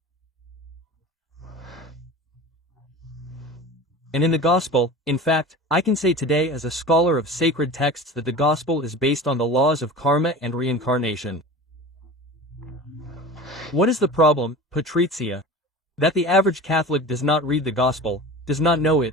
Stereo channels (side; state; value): both; normal; correlation 0.36